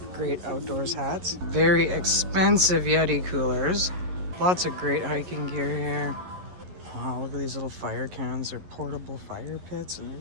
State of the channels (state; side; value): late; left; 11 ms